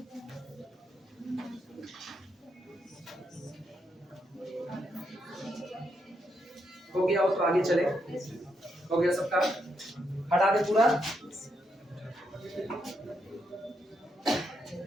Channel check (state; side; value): normal; both; correlation 0.80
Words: हो गया हो तो आगे चले। हो गया सबका? हटा दे पूरा।